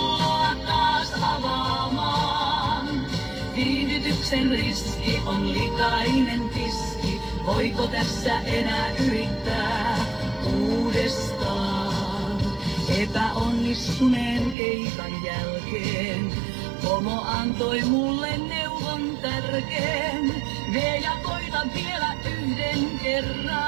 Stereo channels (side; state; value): left; drops out; at 14.6 s